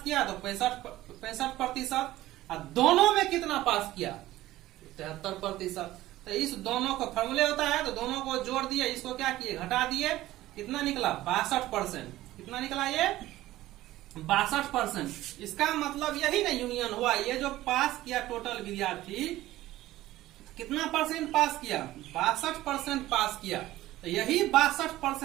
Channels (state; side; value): quieter; left; 15.8 dB